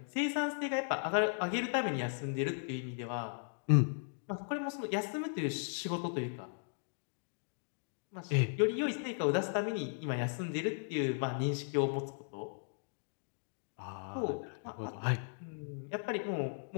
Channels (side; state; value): right; silent; digital silence